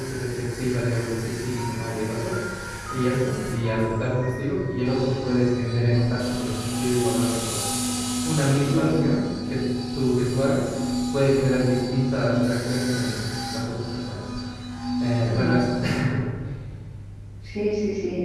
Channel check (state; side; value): identical; both; correlation 1.00